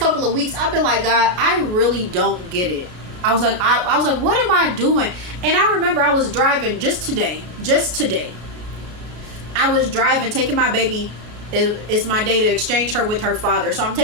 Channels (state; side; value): late; left; 33 ms